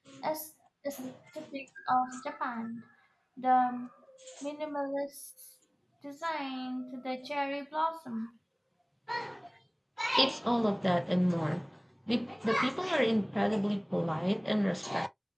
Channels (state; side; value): identical; both; correlation 1.00